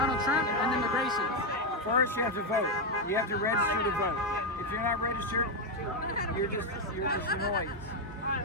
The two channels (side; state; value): both; normal; correlation 0.05